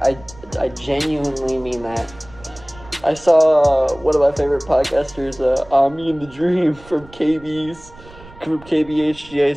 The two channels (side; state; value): right; noise; rumble, 21 dB below the sound